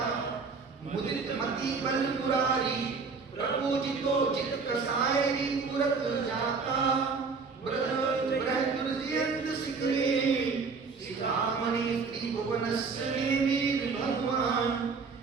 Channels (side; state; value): left; quieter; 4.8 dB